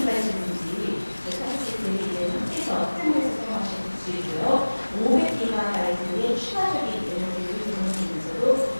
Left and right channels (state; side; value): inverted; both; correlation -1.00